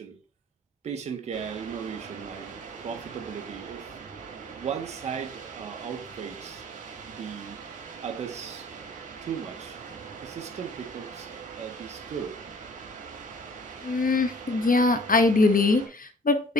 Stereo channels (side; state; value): both; normal; correlation 0.53